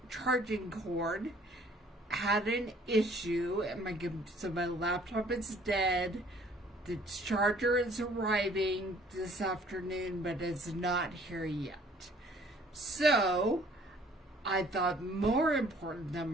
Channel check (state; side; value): normal; both; correlation 0.57